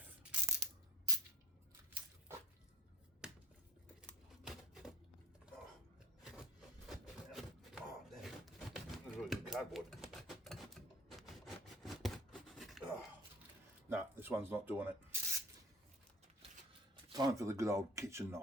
Oh, damn. That's really good cardboard. Oh. No, this one's not doing it. Time for the good old kitchen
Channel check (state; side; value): normal; both; correlation 0.44